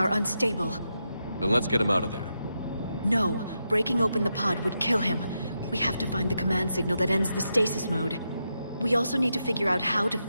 unstable. Then let's get him out of there. No, breaking open the pod would kill him. We have to find the command signal that ends the stasis mode. We also need to figure out how to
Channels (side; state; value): both; inverted; correlation -0.85